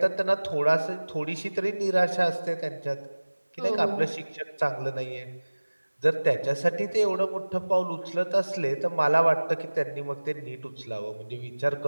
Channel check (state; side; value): inverted; both; correlation -1.00